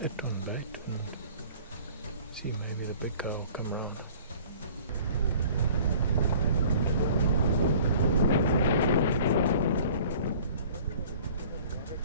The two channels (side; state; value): both; inverted; correlation -0.48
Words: it on bait and see maybe the big guy will come around.